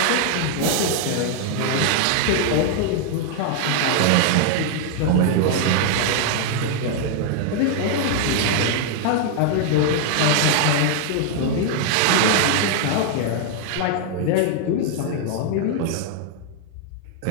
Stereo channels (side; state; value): both; different; correlation 0.00